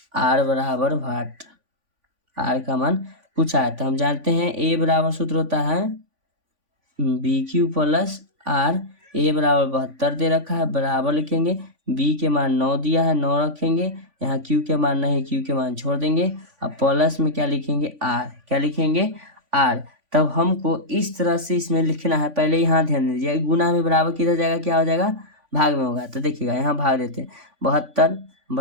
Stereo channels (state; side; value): late; left; 3.5 ms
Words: R बराबर वाट, R का मान पूछा है। तो हम जानते हैं A बराबर सूत्र होता है BQ + R। A = 72 दे रखा है, बराबर लिखेंगे, B के मान 9 दिया है, 9 रखेंगे, यहाँ Q के मान नहीं, Q के मान छोड़ देंगे। अब प्लस में क्या लिखेंगे? R। क्या लिखेंगे? R। तब हमको इस तरह से इसमें लिखना है। पहले यहाँ ध्यान दीजिए, गुना में बराबर किधर जाएगा? क्या हो जाएगा? भाग में होगा। तो देखिएगा यहाँ भाग देते हैं, 72